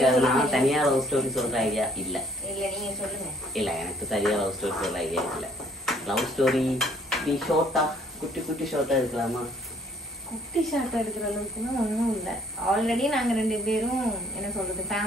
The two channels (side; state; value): both; normal; correlation 0.61